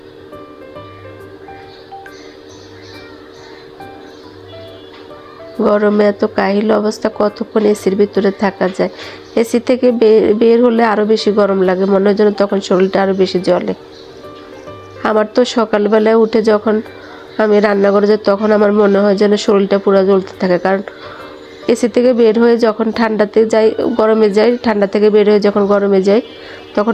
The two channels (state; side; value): identical; both; correlation 1.00